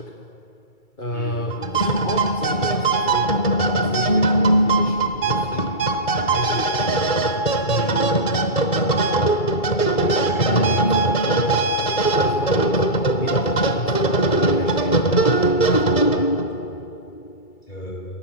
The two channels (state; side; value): late; right; 2.3 ms